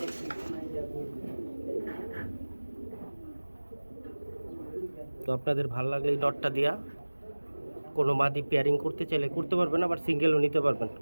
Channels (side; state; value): both; inverted; correlation -1.00